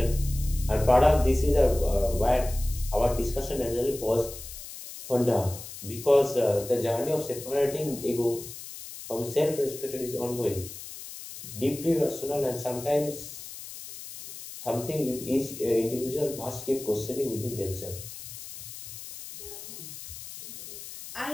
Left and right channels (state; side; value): noise; left; hiss, 12 dB below the sound